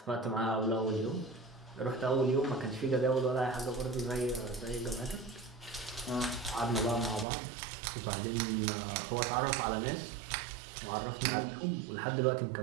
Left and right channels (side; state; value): left; drops out; at 7.2 s